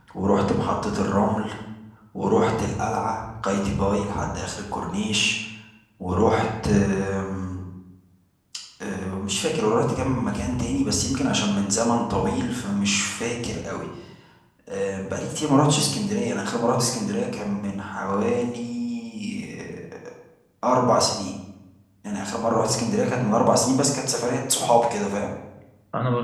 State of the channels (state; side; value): identical; both; correlation 1.00